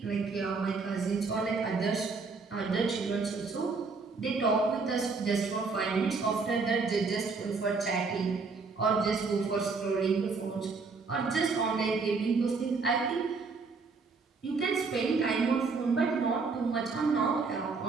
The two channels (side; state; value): left; quieter; 4.5 dB